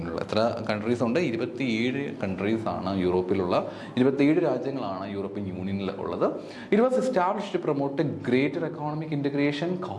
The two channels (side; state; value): both; identical; correlation 1.00